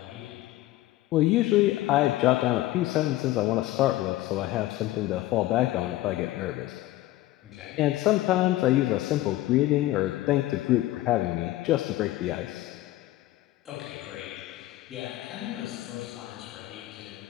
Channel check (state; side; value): quieter; right; 16.1 dB